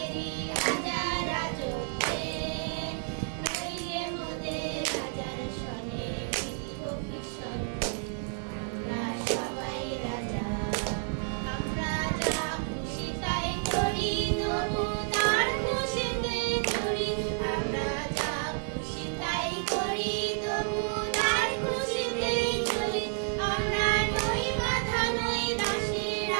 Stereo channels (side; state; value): left; silent; 58 dB below the other